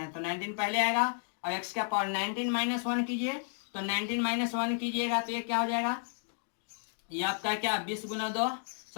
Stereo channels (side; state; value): right; silent; 56 dB below the other